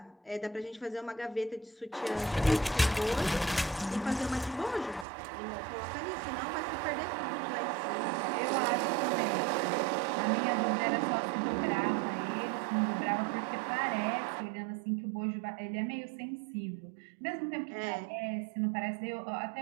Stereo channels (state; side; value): drops out; left; at 5.1 s